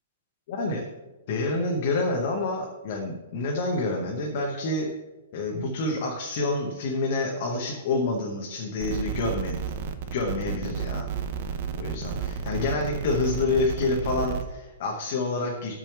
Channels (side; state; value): both; inverted; correlation -0.31